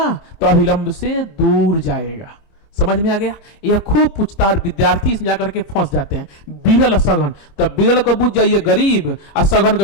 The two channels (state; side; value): late; right; 25 ms